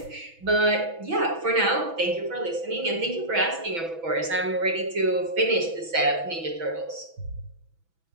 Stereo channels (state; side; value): late; left; 6.0 ms